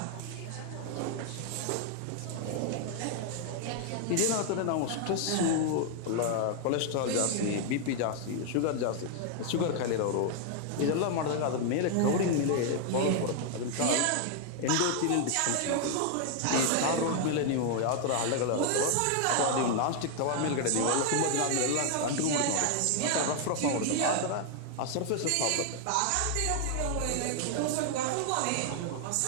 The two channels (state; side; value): different; both; correlation 0.00